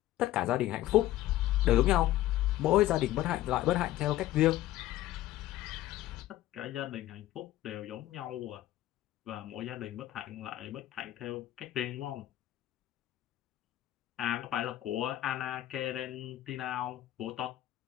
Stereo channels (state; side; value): quieter; right; 14.6 dB